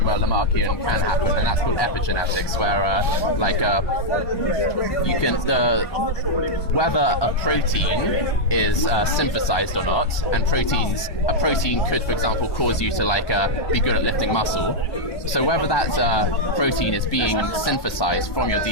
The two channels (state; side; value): late; right; 1.2 ms